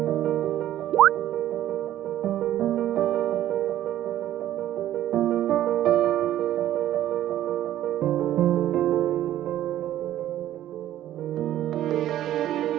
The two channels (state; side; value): quieter; left; 12.7 dB